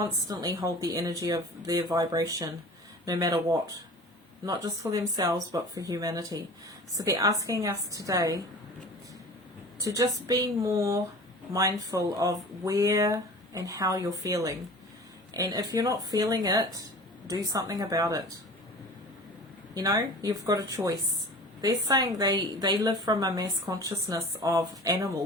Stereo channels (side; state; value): both; normal; correlation 0.40